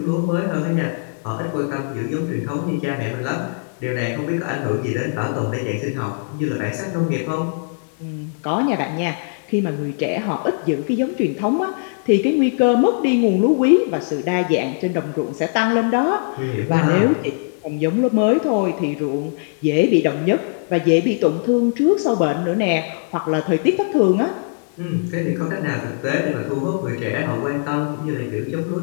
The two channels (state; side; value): silent; right; 65 dB below the other